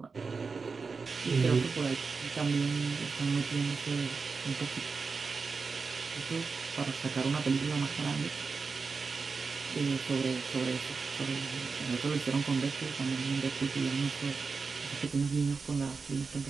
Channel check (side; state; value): left; quieter; 4.7 dB